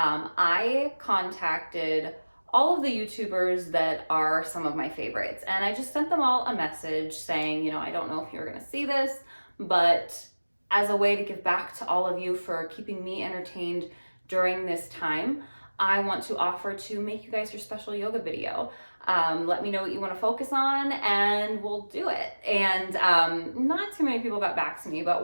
contacted all of the YouTubers that are some of my favorites, and I just sent them all a message saying, I don't know if you're going to see this, but as a way to give back to all of you for keeping me entertained during this time, I want to offer to make you guys your special yoga video. Let me know what you want to focus on and we'll do it. And not too many people got back to me,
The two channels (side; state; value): both; inverted; correlation -1.00